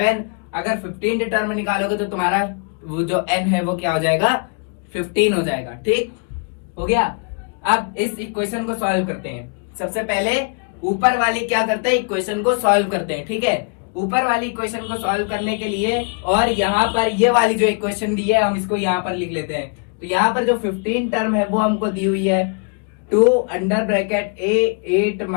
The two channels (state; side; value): quieter; right; 39.4 dB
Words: अगर 15 टर्म निकालोगे तो तुम्हारा वो जो n है वो क्या हो जाएगा 15 हो जाएगा। ठीक हो गया। अब इस इक्वेशन को सॉल्व करते हैं। सबसे पहले ऊपर वाली क्या करते हैं, इक्वेशन को सॉल्व करते हैं। ठीक है, ऊपर वाली इक्वेशन को सॉल्व करने के लिए और यहाँ पर ये वाली जो इक्वेशन दी है हम इसको यहाँ पर लिख लेते हैं। तो यहाँ पर जो 15 टर्म है वो हमको दी हुई है 2 अंडर ब्रैकेट a 8